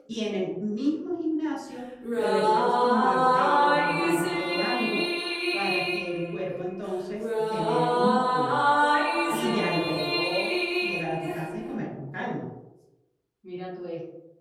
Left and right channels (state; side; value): identical; both; correlation 1.00